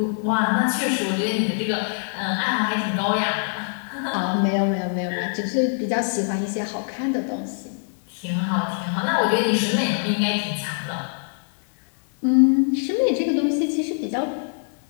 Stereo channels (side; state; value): right; silent; digital silence